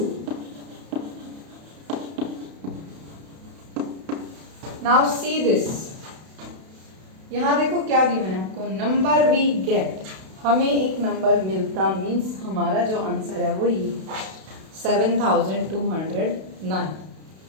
now see this, यहाँ देखो क्या given है आपको, number we get, हमें एक number मिलता, means हमारा जो आंसर है वो ये 7209.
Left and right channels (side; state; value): left; late; 32 ms